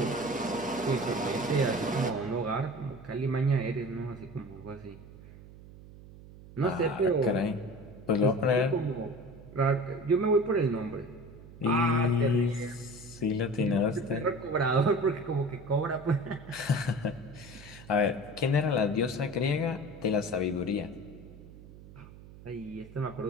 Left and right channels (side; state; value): right; noise; hum, 18 dB below the sound